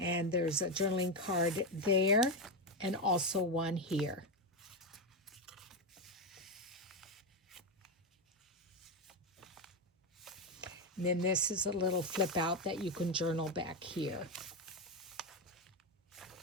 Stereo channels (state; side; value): normal; both; correlation 0.09